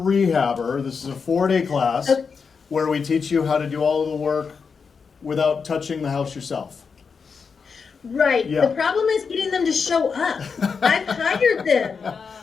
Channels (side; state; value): right; quieter; 5.6 dB